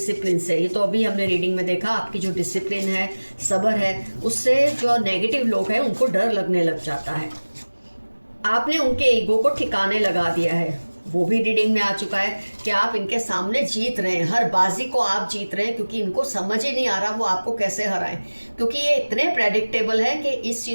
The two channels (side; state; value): both; inverted; correlation -1.00